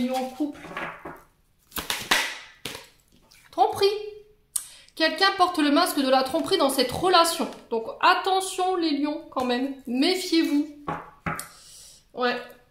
en couple. Tromperie. Quelqu'un porte le masque de la tromperie dans cette relation. Donc attention les lions quand même. Méfiez-vous. Ouais.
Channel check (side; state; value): both; identical; correlation 1.00